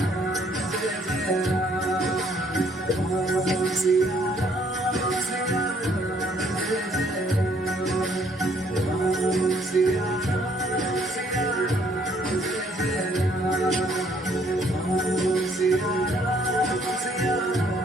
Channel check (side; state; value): both; normal; correlation 0.65